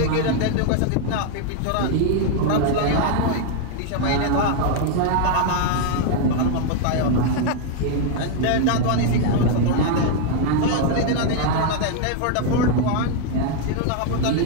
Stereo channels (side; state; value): both; different; correlation 0.00